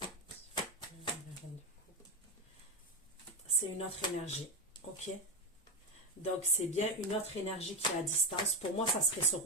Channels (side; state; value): both; normal; correlation 0.12